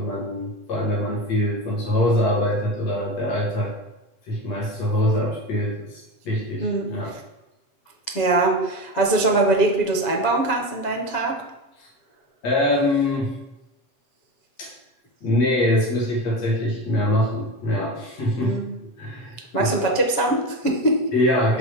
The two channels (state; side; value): late; right; 7.3 ms